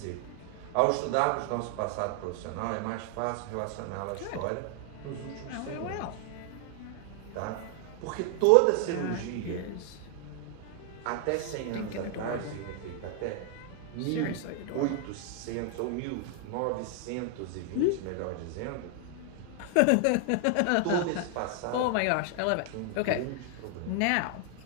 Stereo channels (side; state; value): both; different; correlation 0.00